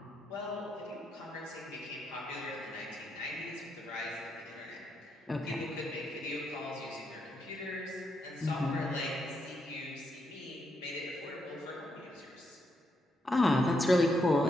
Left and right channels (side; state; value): both; normal; correlation 0.79